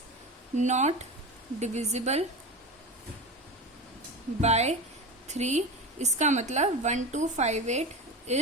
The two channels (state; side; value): normal; both; correlation 0.25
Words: नॉट डिविजिबल बाय 3। इसका मतलब 1258